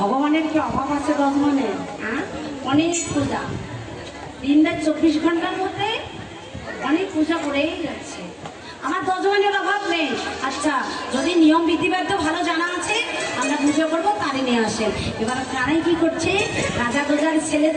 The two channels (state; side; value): identical; both; correlation 1.00